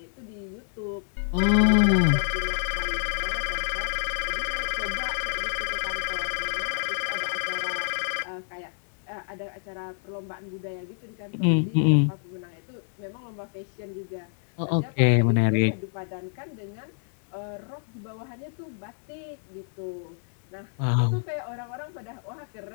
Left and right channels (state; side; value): silent; right; digital silence